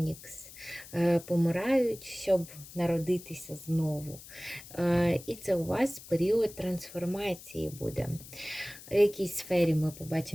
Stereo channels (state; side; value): noise; left; hiss, 17 dB below the sound